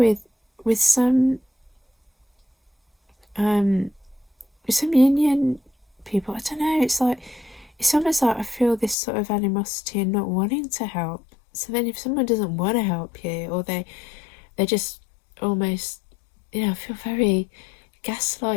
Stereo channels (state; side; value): drops out; right; at 9.0 s